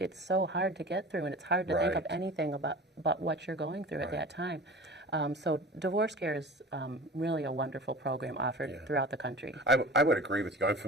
so hard to get through, and it's hard to think of anything about what you're going through at that time. So divorce care is really a wonderful program offered throughout the country. I would agree with you. I'm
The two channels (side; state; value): both; normal; correlation 0.37